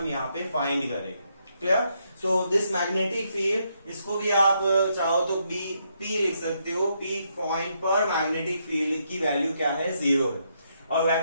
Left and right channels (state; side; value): inverted; both; correlation -0.77